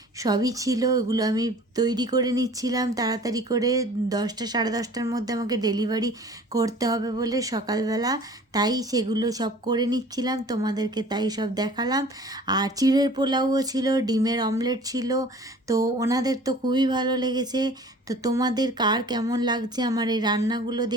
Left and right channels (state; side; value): normal; both; correlation 0.47